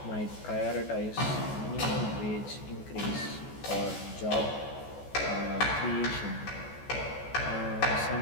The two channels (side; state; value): right; late; 14 ms